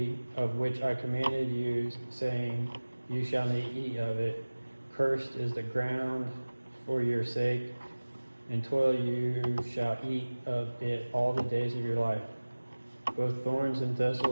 of which I commanded you, saying, You shall not eat of it. Cursed is the ground for your sake, and toil you shall eat of it all the days of your life. Both thorns and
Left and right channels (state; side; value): inverted; both; correlation -1.00